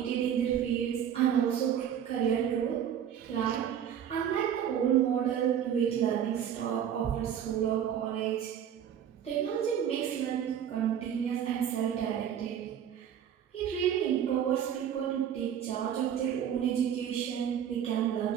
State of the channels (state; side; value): quieter; left; 9.3 dB